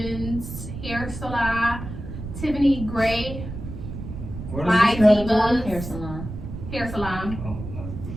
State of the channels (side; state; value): right; noise; rumble, 9 dB below the sound